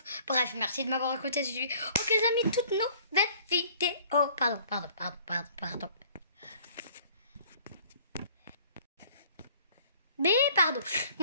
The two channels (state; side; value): inverted; both; correlation -0.54